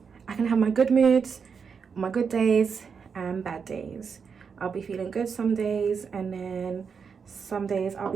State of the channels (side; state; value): left; quieter; 6.1 dB